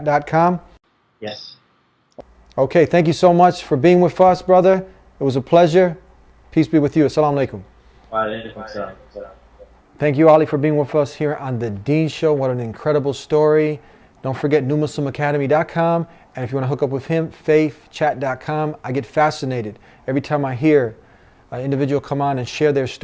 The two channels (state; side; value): identical; both; correlation 1.00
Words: Yes. Okay, thank you so much for being with us, brother. It was a pleasure. Peace be with you. Assalamu alaikum. Wa alaikum salam. Thank you, Ali, for being with us here on The Deen Show. What an incredible story. Don't forget newmuslimacademy.com. And if you want to hook up with him, faithchat.com. I get fascinated every time I hear an individual come on and share their